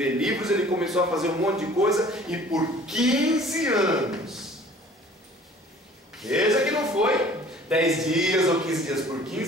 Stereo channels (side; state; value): both; normal; correlation 0.50